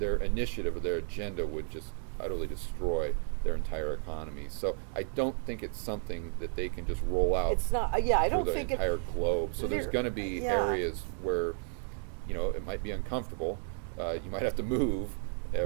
initiative or their agenda would just utterly destroy their entire economy. So I don't think it's something that they can just roll out. It's not. Yeah, I don't think the entire globe. So there's going to be areas where, it might be uncomfortable. You might have to move,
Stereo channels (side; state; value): left; silent; 56 dB below the other